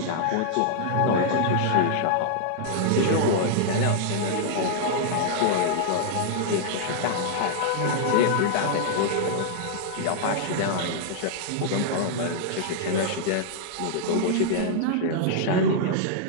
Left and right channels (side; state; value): both; different; correlation -0.01